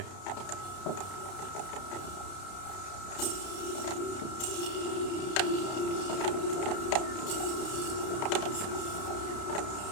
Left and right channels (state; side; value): late; right; 31 ms